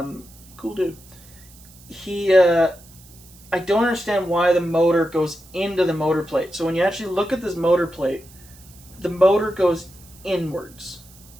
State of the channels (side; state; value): right; noise; hiss, 23 dB below the sound